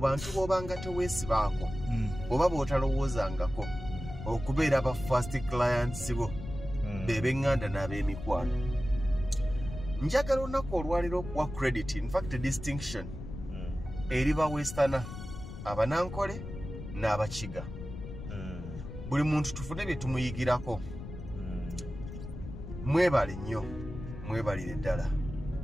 b'obanga teweesibaako oba b'otalowoozangako okubeera aba first clients bo b'eŋŋanda n'ab'emikwano. Njagala olunaku olwaliro okuwa credit, in fact distinction, eri ba Westerner, Abanankole n'Abakiga. Buli muntu tufune bye tumuyigirako. Mwebale nnyo, mwebalire ddala.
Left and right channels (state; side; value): noise; left; rumble, 10 dB below the sound